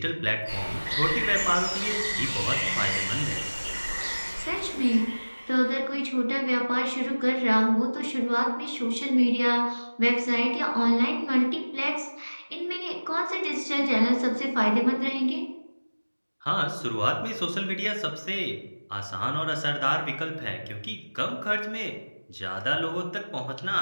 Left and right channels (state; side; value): inverted; both; correlation -1.00